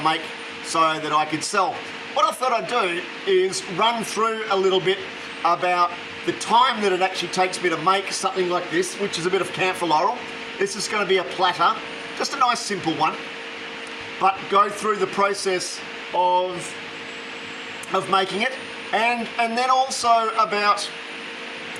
make so that I could sell. What I thought I'd do is run through a little bit about the time that it actually takes me to make something like this, which is a bit of Camphor Laurel. This is going to be a platter, just a nice simple one, but go through the process of making it, and then also about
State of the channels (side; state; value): both; identical; correlation 1.00